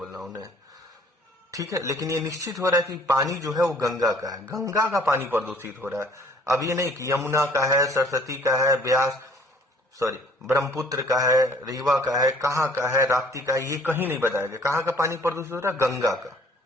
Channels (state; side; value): normal; both; correlation 0.55